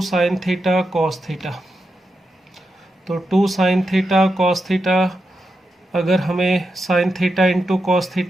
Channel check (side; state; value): both; normal; correlation 0.87